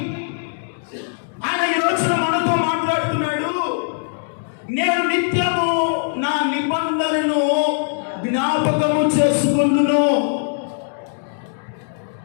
ఆయన ఈ రోజున మనతో మాట్లాడుతున్నాడు. నేను నిత్యము నా నిబంధనను జ్ఞాపకము చేసుకుందును.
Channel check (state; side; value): silent; right; digital silence